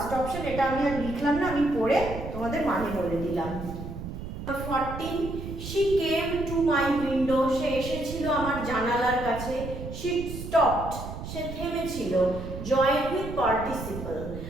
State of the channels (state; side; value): noise; right; rumble, 9 dB below the sound